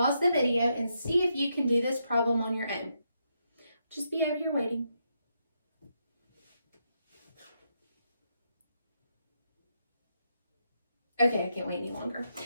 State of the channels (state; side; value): inverted; both; correlation -0.80